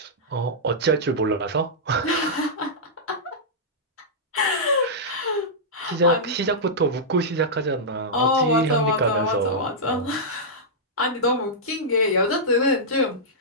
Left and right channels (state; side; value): normal; both; correlation -0.11